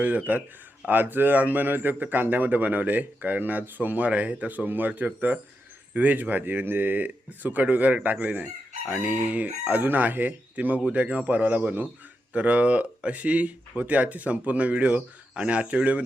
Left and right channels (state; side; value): normal; both; correlation 0.86